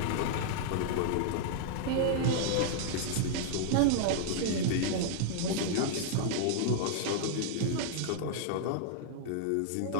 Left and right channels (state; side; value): different; both; correlation -0.01